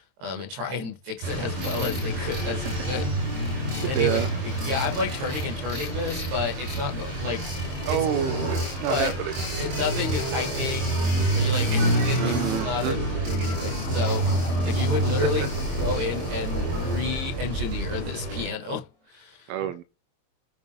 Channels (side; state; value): left; late; 23 ms